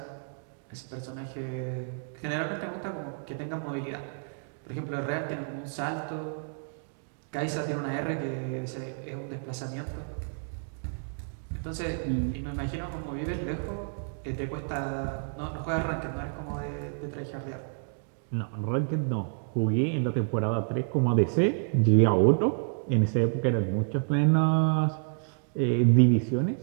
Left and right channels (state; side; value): silent; left; digital silence